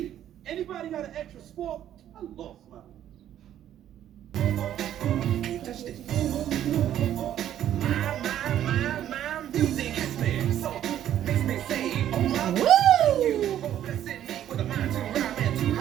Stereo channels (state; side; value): quieter; left; 11.2 dB